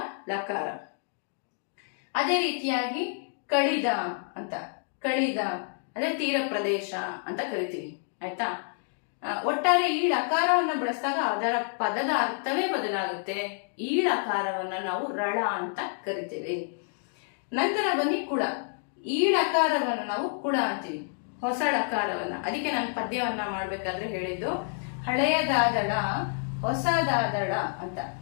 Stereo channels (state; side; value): silent; right; 59 dB below the other